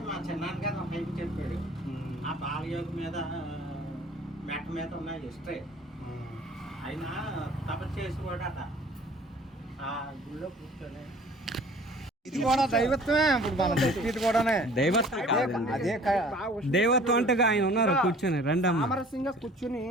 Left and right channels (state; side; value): normal; both; correlation 0.50